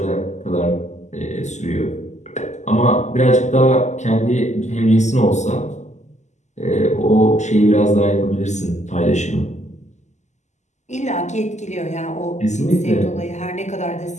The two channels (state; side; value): late; right; 0.34 ms